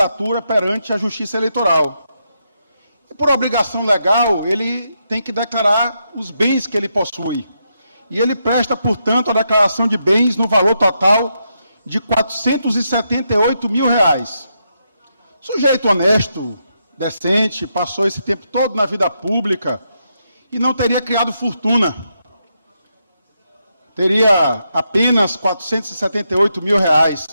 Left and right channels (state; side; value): inverted; both; correlation -0.82